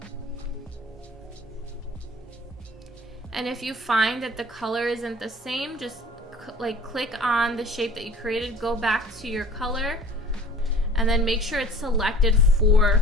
And if you find that the color isn't the same, just click on the shape that you created, go back to your color, and then make sure it's selected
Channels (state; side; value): normal; both; correlation 0.46